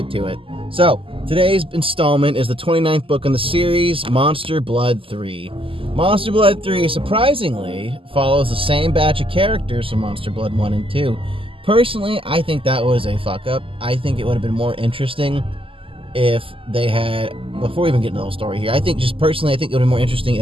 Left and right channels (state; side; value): late; left; 0.26 ms